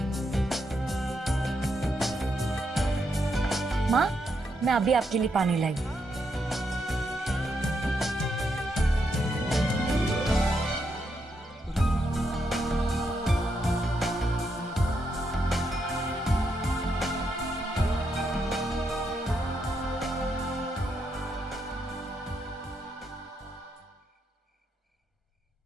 माँ, मैं अभी आपके लिए पानी लाई।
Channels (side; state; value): both; normal; correlation 0.80